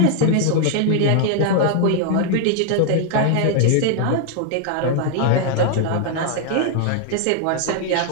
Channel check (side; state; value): both; different; correlation 0.00